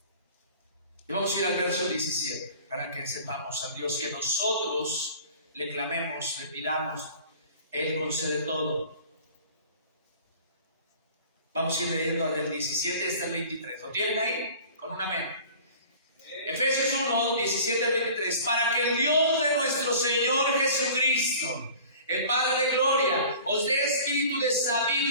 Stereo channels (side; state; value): both; inverted; correlation -0.44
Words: Y vamos a ir al verso 17, para que sepamos al Dios que nosotros le clamemos, le pidamos, Él concede todo. Vamos a ir leyendo del 17 hasta el 23. ¿Lo tienen ahí? Con un amén. Efesios 1, 17 al 23. Para que el Dios de nuestro Señor Jesucristo, el Padre de gloria, os dé espíritu de